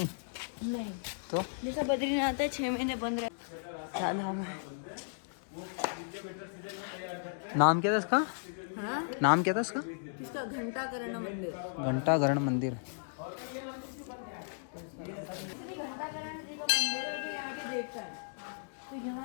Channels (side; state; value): right; silent; digital silence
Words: नहीं तो जैसा बद्रीनाथ है 6 महीने बंद रहे। धाम है। नाम क्या था इसका? हाँ नाम क्या था इसका? किसका? घंटाकरण मंदिर। घंटाघरण मंदिर। घंटाकरण जी का मंदिर है जो यहाँ के देवता है। तो